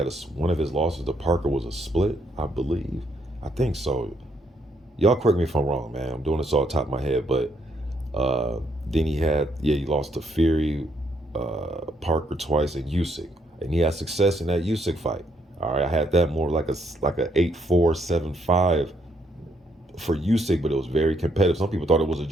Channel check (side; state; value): both; normal; correlation 0.73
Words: one of his losses to Parker was a split, I believe. I think so. Y'all correct me if I'm wrong, man. I'm doing this off the top of my head, but then he lost to Fury, Parker twice, and Usyk. And he had success in that Usyk fight. All right, I had that more like a 8-4, 7-5 for Usyk, but it was very competitive. Some people thought it was a